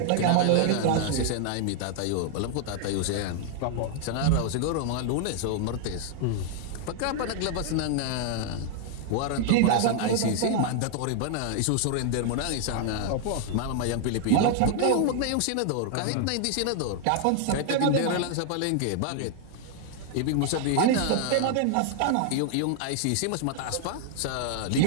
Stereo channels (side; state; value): both; different; correlation 0.00